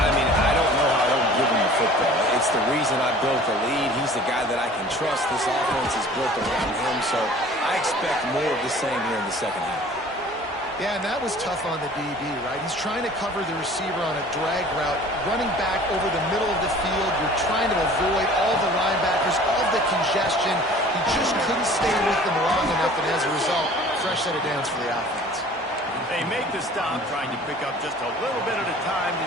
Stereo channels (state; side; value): normal; both; correlation 0.47